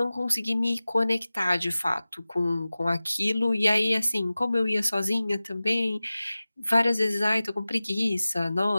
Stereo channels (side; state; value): both; inverted; correlation -0.97